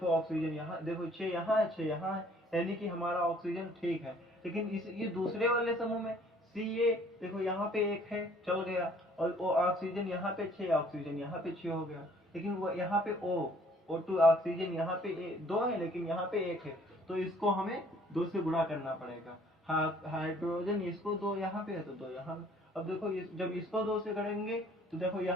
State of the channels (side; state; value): both; normal; correlation 0.58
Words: ऑक्सीजन यहाँ, देखो 6 यहाँ है 6 यहाँ है, यानी कि हमारा ऑक्सीजन ठीक है। लेकिन ये दूसरे वाले समूह में Ca देखो यहाँ पे 1 है, चल गया, और वो ऑक्सीजन यहाँ पे 6, ऑक्सीजन यहाँ पे 6 हो गया। लेकिन वो यहाँ पे O2 ऑक्सीजन यहाँ पे 2 है लेकिन यहाँ पे 1 है, तो इसको हमें 2 से गुणा करना पड़ेगा। हाइड्रोजन इसको 2 यहाँ पे है तो 2 यहाँ। अब देखो जब इसको 2 से करेंगे तो देखो